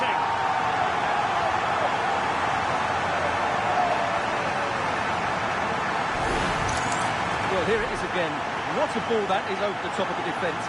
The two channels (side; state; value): both; identical; correlation 1.00